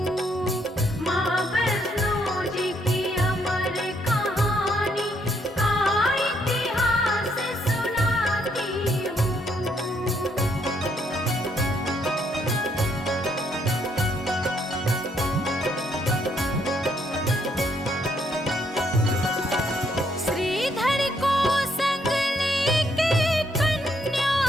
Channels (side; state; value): both; normal; correlation 0.72